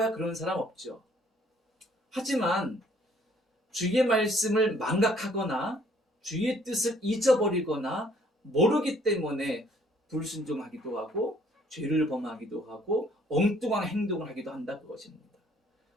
그런 사람 없죠. 하지만 주의 말씀을 망각하거나 주의 뜻을 잊어버리거나 모르기 때문에 불순종하기도 하고 죄를 범하기도 하고 엉뚱한 행동을 하기도 한다 그것입니다.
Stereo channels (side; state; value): both; normal; correlation 0.61